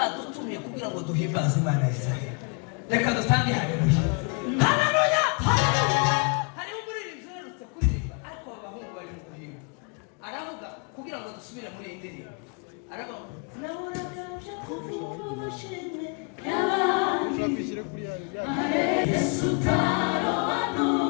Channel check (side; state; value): right; quieter; 35.0 dB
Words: kugira ngo duhimbaze Imana Israel. Reka dutange haleluya. Haleluya! Hariho umuririmbyi uherutse kuririmba ariko abahungu bari mu guhimba. Aravuga kugira ngo dusubire muri iyi ndirimbo. Aravuga nahoraje kuvushime Ushakishire kuri ya Yesu